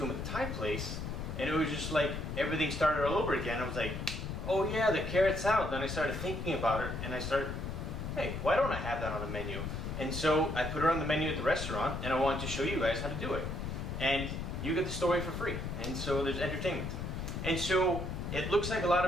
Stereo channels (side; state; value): left; noise; rumble, 5 dB below the sound